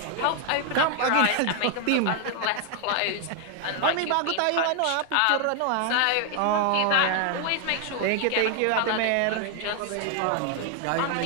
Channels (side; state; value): both; different; correlation 0.00